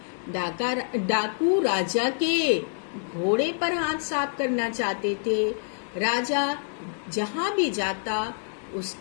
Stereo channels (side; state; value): right; silent; digital silence